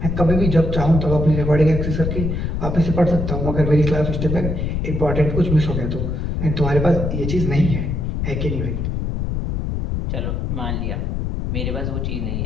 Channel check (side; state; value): left; noise; rumble, 1 dB below the sound